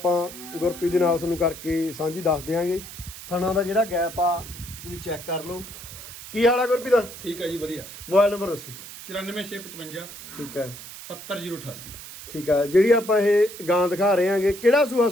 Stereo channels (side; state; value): right; noise; hiss, 13 dB below the sound